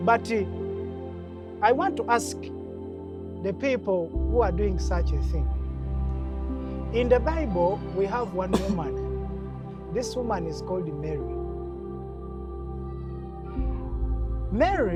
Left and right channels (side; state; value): both; identical; correlation 1.00